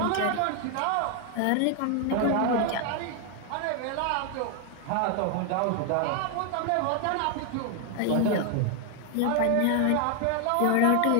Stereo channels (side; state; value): both; different; correlation 0.00